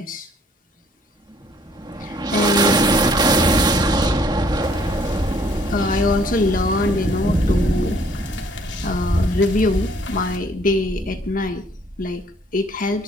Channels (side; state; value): both; normal; correlation 0.62